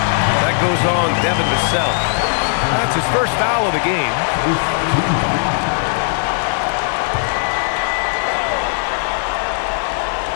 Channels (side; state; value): right; silent; digital silence